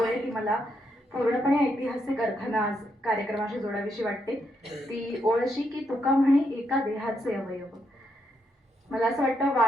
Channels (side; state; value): both; normal; correlation 0.78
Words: आहे ती मला पूर्णपणे ऐतिहासिक अर्थानं आज कार्यक्रमाशी जोडावीशी वाटते. ती ओळ अशी की तुका म्हणे एका देहाचे अवयव. मला असं वाटतं